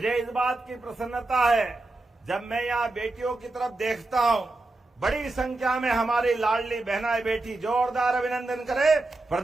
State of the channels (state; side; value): quieter; left; 3.0 dB